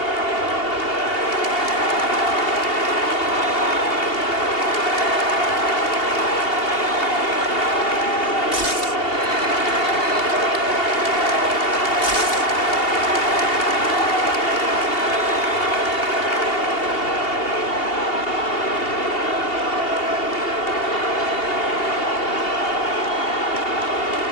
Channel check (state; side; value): late; right; 2.8 ms